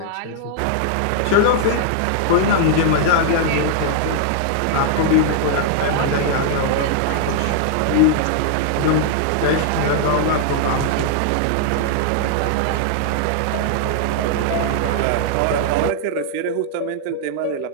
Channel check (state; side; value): different; both; correlation -0.01